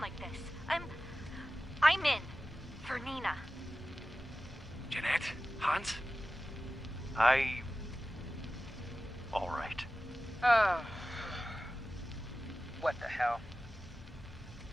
like this. I'm in. For Nina. Jeanette? Hans? All right. What the hell?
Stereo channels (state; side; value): normal; both; correlation 0.95